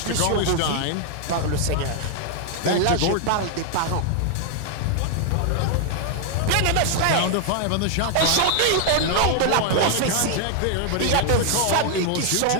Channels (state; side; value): different; both; correlation 0.00